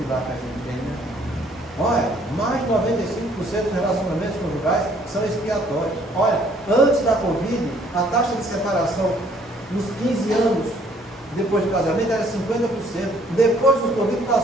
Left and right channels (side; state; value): both; normal; correlation 0.62